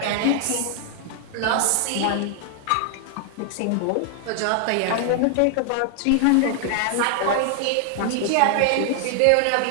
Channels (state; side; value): different; both; correlation 0.00